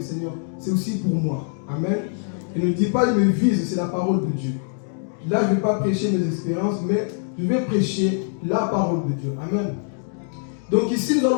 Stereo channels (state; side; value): silent; right; 63 dB below the other